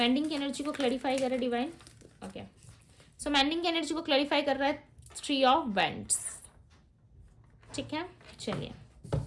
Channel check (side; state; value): both; identical; correlation 1.00